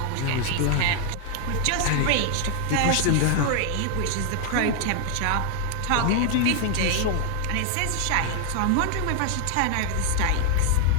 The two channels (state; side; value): different; both; correlation 0.00